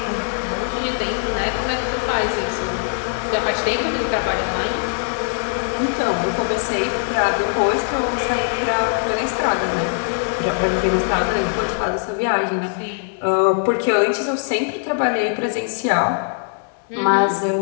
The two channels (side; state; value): right; silent; 65 dB below the other